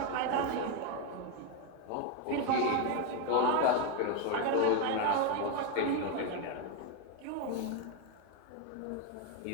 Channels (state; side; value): different; both; correlation 0.02